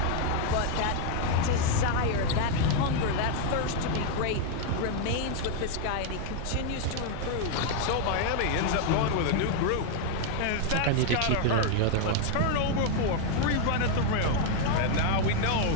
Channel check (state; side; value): different; both; correlation 0.00